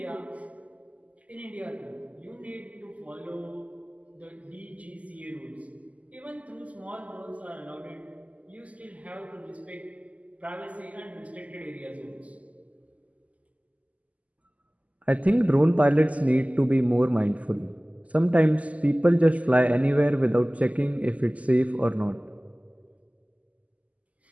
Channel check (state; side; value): late; left; 0.071 ms